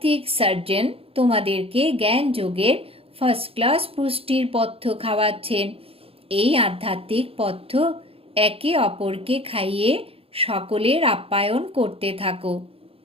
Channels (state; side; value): late; left; 0.27 ms